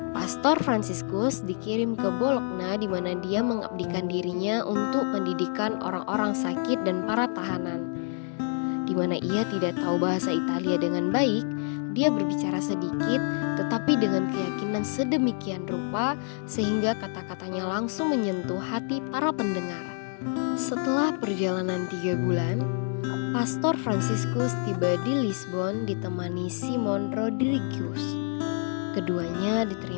Pastor Fransiskus dikirim ke Bologna di mana dia mengabdikan dirinya untuk pendidikan orang-orang sakit dan para tahanan. Di di mana ia tidak tahu bahasa Italia dengan baik, dia berbicara sedikit tetapi dengan keyakinan sedemikian rupa sehingga kata-katanya langsung menyentuh hati para pendengar. Setelah perjalanan 3 bulan, Pastor Franciscus tiba di Lisbon ditemani Simon Rodrigues. Keduanya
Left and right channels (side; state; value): right; silent; 56 dB below the other